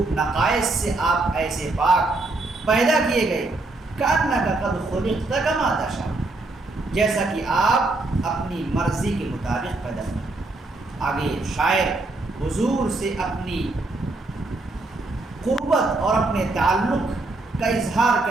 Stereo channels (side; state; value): left; quieter; 3.0 dB